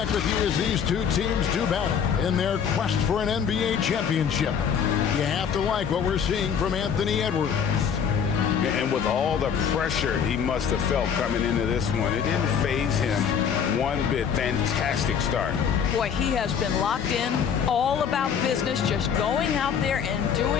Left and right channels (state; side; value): quieter; right; 7.5 dB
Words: with you as these 2 teams do battle in their quest for an NBA championship. You have to like what we're seeing from Anthony Edwards. And with all the pressure he must have felt coming into this one, it didn't faze him one bit. Fantastic start. Boy, he has been locked in, all about business, just going out there and